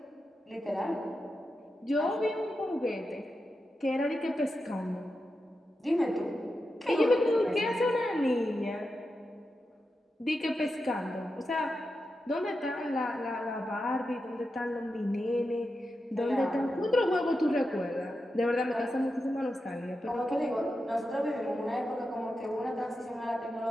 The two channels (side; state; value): both; normal; correlation 0.89